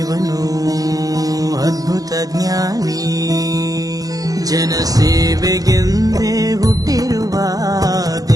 ಅದ್ಭುತ ಜ್ಞಾನಿ. ಜನಸೇವೆಗೆಂದೇ ಹುಟ್ಟಿರುವ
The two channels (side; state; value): left; late; 0.18 ms